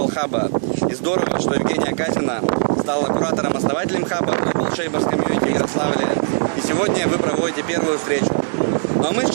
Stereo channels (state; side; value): silent; left; digital silence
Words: хаба. И здорово, что Евгения Казина стала куратором-основателем хаба Global Shapers Community в Ярославле. И сегодня вы проводите первую встречу. Ну а мы